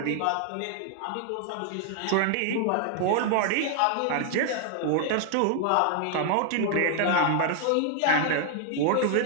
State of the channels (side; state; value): both; different; correlation 0.00